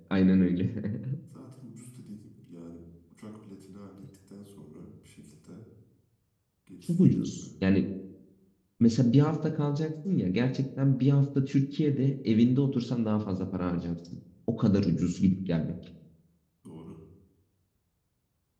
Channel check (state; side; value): identical; both; correlation 1.00